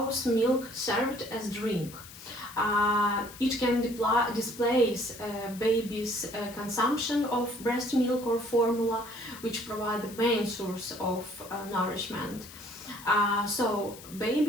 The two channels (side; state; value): left; noise; hiss, 17 dB below the sound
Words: milk served as drink. It can displace baby's consumption of breast milk or formula, which provide the main source of nourishment. So